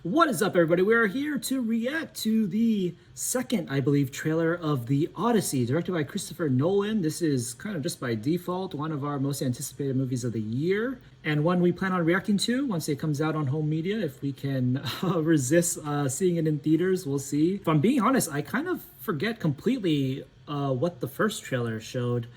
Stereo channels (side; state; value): both; identical; correlation 1.00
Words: What is up, everybody? We are here to react to the second, I believe, trailer of The Odyssey, directed by Christopher Nolan. This is kind of just by default one of our most anticipated movies of the year, and one we plan on reacting to once it comes out on home media. If we can resist seeing it in theaters, we'll see. If I'm being honest, I kind of forget completely what the first trailer showed.